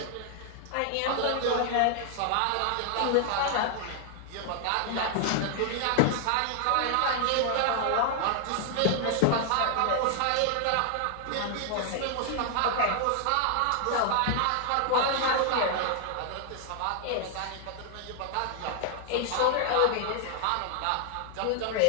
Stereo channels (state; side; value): different; both; correlation 0.00